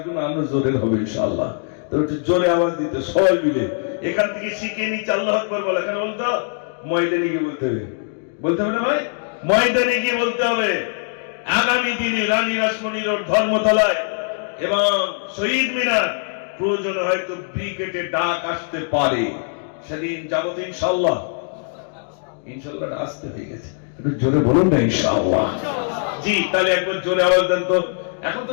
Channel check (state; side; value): silent; right; digital silence